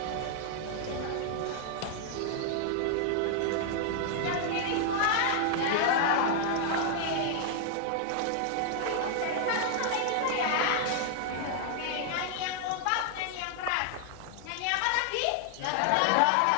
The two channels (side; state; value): both; different; correlation 0.00